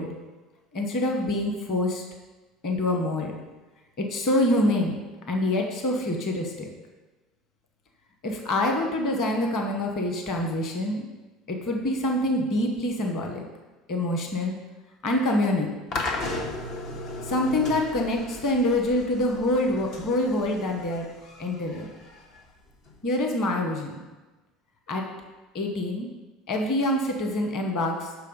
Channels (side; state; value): both; normal; correlation 0.34